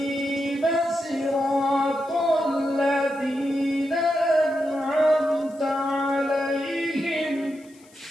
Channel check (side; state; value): left; noise; hiss, 28 dB below the sound